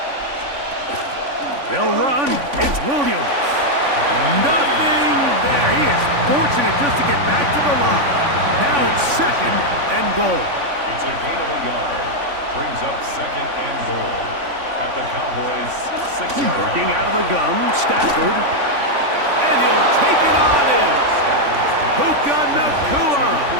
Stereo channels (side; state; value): left; late; 3.5 ms